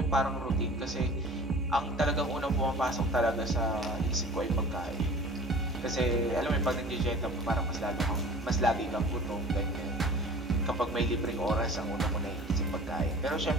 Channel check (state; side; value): normal; both; correlation 0.44